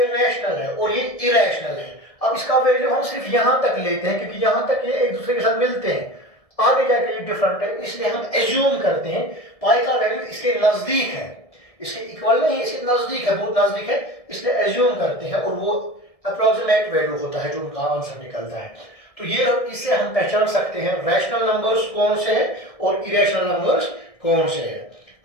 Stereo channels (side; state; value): right; late; 1.7 ms